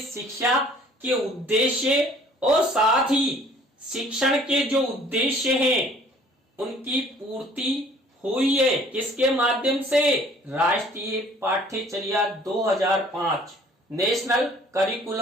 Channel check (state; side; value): normal; both; correlation 0.55